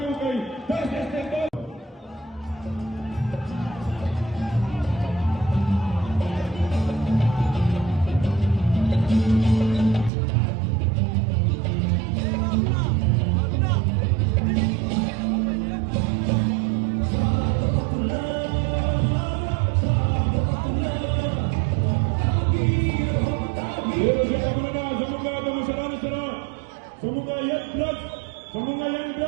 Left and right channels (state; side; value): drops out; left; at 10.1 s